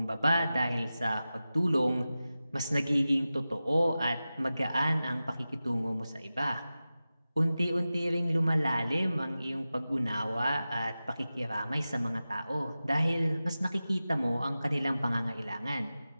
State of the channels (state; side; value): inverted; both; correlation -0.95